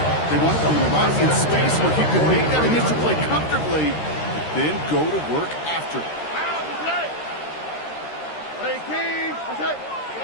They wanted them around in space where he could make that initial play comfortably, then go to work after.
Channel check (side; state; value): right; late; 13 ms